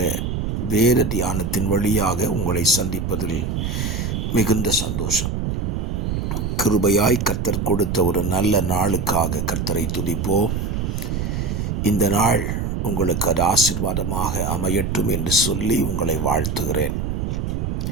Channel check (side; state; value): right; noise; rumble, 1 dB below the sound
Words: வேத தியானத்தின் வழியாக உங்களை சந்திப்பதில் மிகுந்த சந்தோஷம். கிருபையாய் கர்த்தர் கொடுத்த ஒரு நல்ல நாளுக்காக கர்த்தரை துதிப்போம். இந்த நாள் உங்களுக்கு அது ஆசீர்வாதமாக அமையட்டும் என்று சொல்லி உங்களை வாழ்த்துகிறேன்.